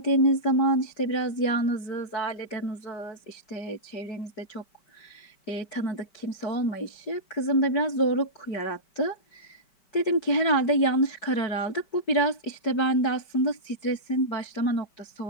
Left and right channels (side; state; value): right; late; 5.2 ms